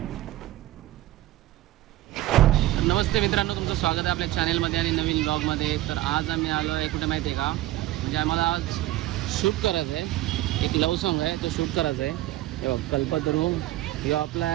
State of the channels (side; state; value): left; quieter; 15.9 dB